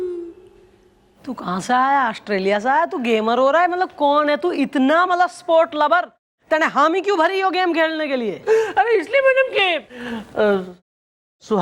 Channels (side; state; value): both; identical; correlation 1.00